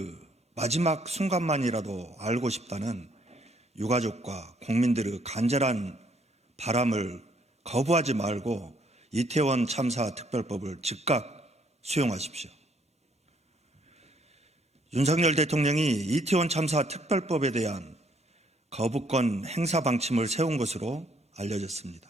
마지막 순간만이라도 알고 싶다는 유가족과 국민들의 간절한 바람을 거부하지 말고 이태원 참사 특별법을 즉각 수용하십시오. 윤석열 대통령이 이태원 참사 특별법에 대한 거부권 행사 방침을 세운 것으로 알려졌습니다.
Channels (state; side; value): normal; both; correlation 0.67